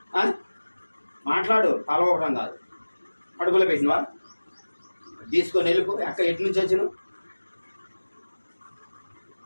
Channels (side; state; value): both; inverted; correlation -1.00